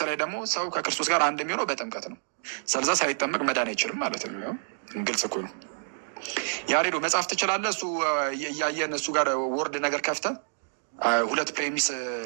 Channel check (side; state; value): left; silent; digital silence